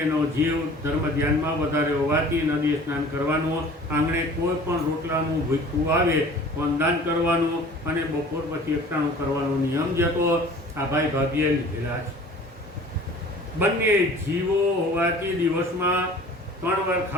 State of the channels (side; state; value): both; normal; correlation 0.46